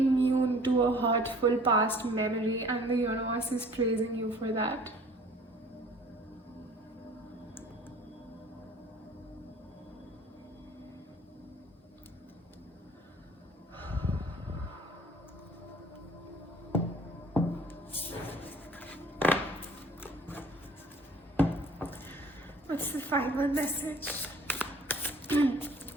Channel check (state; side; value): normal; both; correlation 0.52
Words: to a hurtful past memory, and the universe is praising you for that. What's the final message?